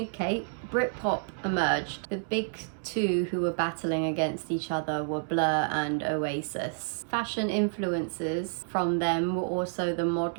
Kate, Britpop emerged. The big two who were battling against each other were Blur and Oasis. Fashion influences from them were also the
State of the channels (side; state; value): left; silent; 58 dB below the other